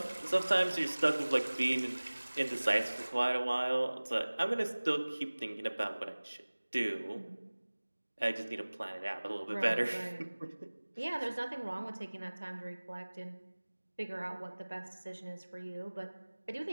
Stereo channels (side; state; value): both; inverted; correlation -1.00